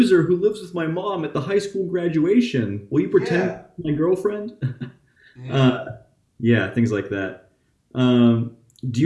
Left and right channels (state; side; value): identical; both; correlation 1.00